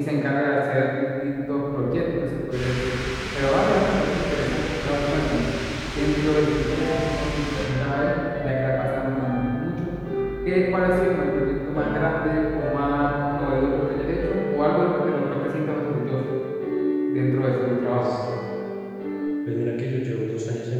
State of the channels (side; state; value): both; identical; correlation 1.00